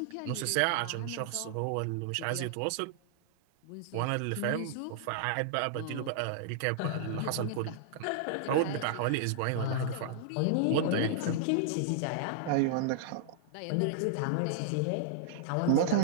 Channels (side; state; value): both; different; correlation -0.01